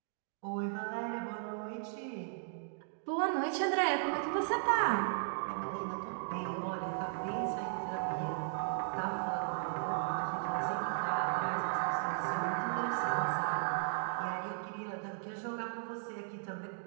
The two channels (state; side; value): silent; left; digital silence